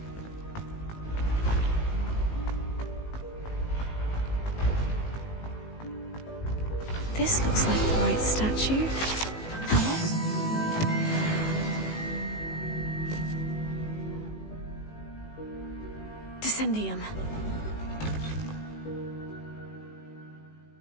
This looks like the right statue. Now what was... Descendium.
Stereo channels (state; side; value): late; right; 18 ms